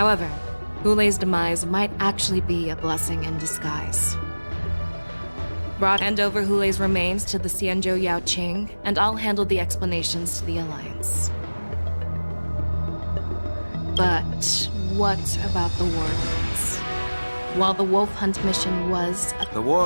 Wulei's demise might actually be a blessing in disguise. Hand over Wulei's remains to the Xianzhou Yaoqing, and I'll handle the explanations to the Alliance. But what about the war dance? While the wolf hunt mission was... The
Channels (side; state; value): both; inverted; correlation -1.00